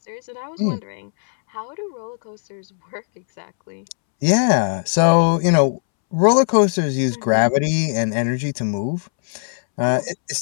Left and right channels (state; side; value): silent; right; 66 dB below the other